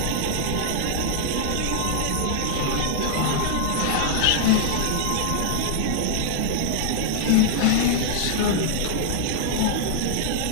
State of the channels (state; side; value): different; both; correlation -0.01